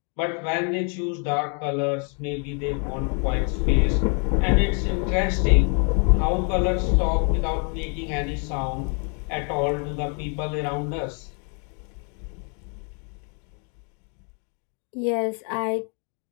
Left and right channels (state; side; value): quieter; right; 38.5 dB